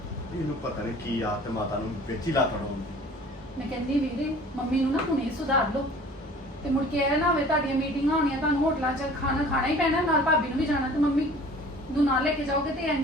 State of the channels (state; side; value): normal; both; correlation 0.47